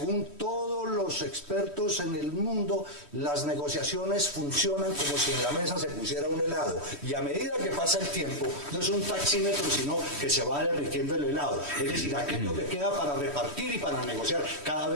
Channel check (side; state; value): right; late; 3.1 ms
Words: todos los expertos en el mundo, las negociaciones funcionan como si en la mesa se pusiera un helado. Y a medida que pasa el tiempo, no es un taxímetro, sino que se va derritiendo el helado. Es decir, aquello que queda para repartir y para negociar cada